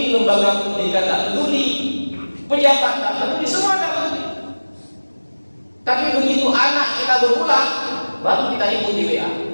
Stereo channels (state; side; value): inverted; both; correlation -1.00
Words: lembaga pendidikan tak peduli, pejabat tak peduli, semua tak peduli. Tapi begitu anak kita berulang, baru kita ikut di WA.